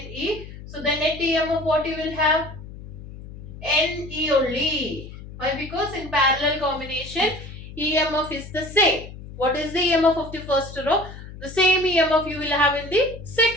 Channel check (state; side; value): noise; left; hum, 14 dB below the sound